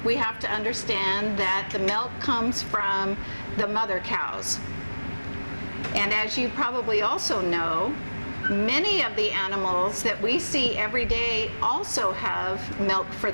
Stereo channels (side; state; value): both; inverted; correlation -1.00